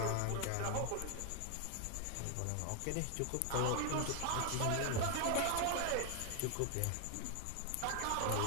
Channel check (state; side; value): different; both; correlation 0.00